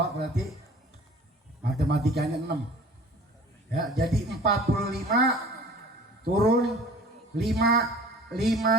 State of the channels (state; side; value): normal; both; correlation 0.46